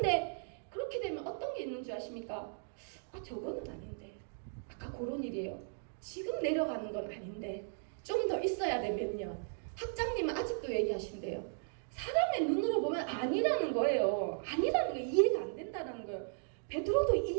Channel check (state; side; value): silent; left; digital silence